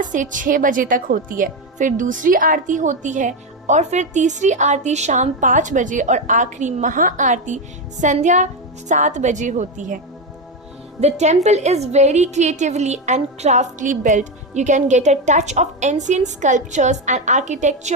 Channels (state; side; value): normal; both; correlation 0.11